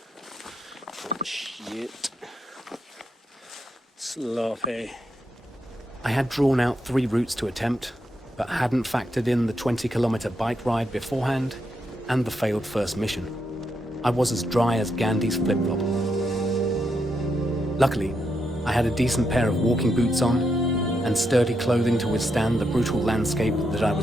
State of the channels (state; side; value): normal; both; correlation 0.81